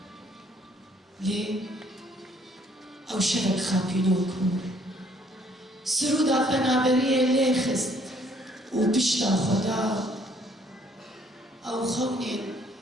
لێ ئەو شەوەک خاپینۆک بوو سرودا پەنابەریە لێ خست و پشتا خۆدا ئەو خەونێن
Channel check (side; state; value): both; normal; correlation 0.63